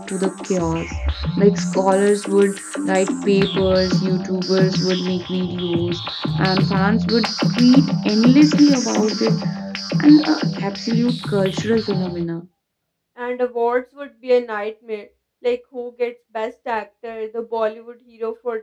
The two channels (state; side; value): identical; both; correlation 1.00